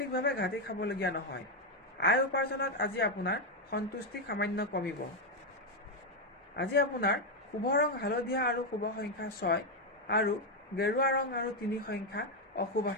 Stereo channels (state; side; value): normal; both; correlation 0.04